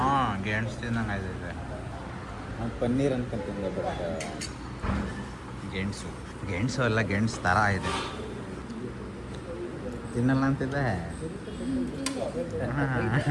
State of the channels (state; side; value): identical; both; correlation 1.00